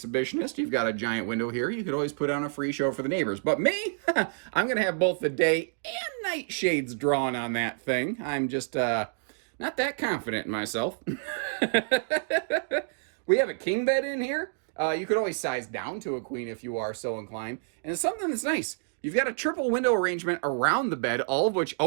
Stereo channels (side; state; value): left; silent; digital silence